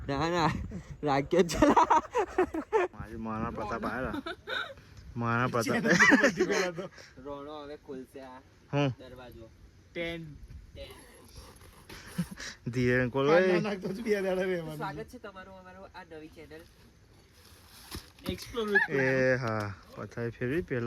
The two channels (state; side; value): identical; both; correlation 1.00